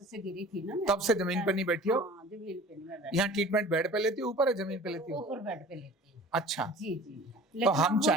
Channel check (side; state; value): both; normal; correlation 0.43